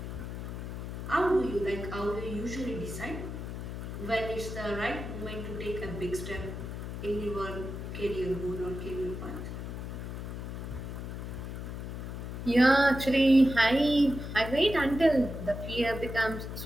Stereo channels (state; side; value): noise; left; hum, 7 dB below the sound